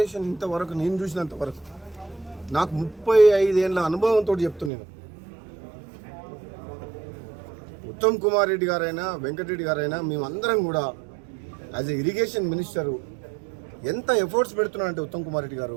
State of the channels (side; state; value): left; drops out; at 4.7 s